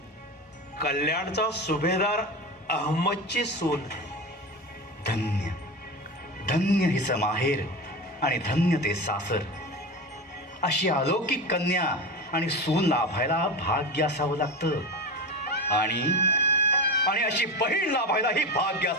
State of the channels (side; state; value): both; normal; correlation 0.24